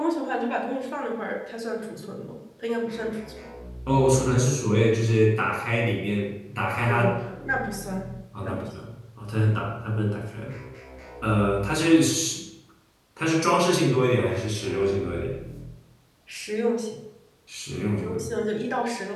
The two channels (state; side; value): identical; both; correlation 1.00